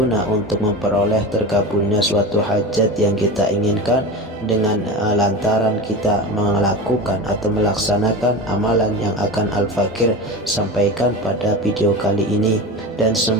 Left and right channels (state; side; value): normal; both; correlation 0.27